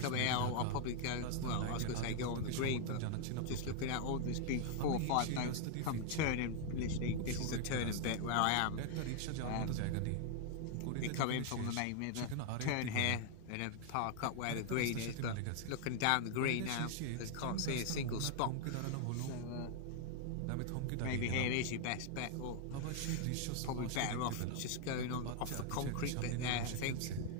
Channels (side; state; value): both; different; correlation 0.00